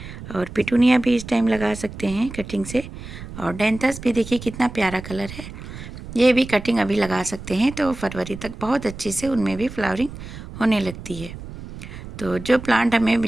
और पिटूनिया भी इस टाइम लगा सकते हैं कटिंग से। और डेंथस भी देखिए कितना प्यारा कलर है, ये भी कटिंग अभी लगा सकते हैं। तो फरवरी तक बहुत अच्छी से उनमें भी फ्लावरिंग होने लगती है। तो जो प्लांट हमें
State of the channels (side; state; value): right; noise; rumble, 12 dB below the sound